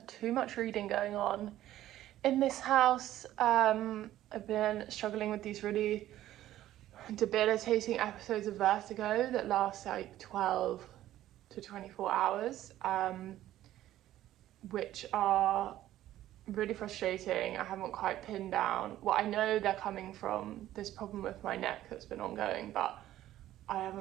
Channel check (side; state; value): left; quieter; 13.6 dB